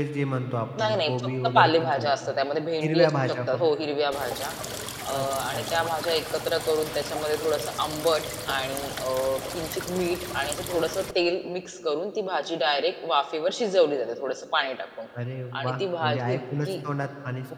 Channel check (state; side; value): identical; both; correlation 1.00